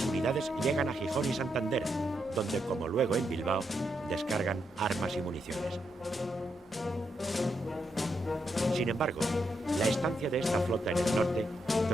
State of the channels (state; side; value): normal; both; correlation 0.81